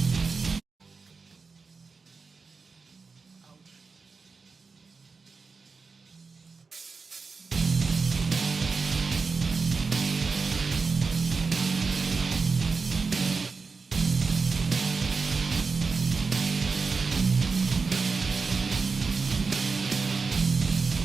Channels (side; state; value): left; quieter; 4.6 dB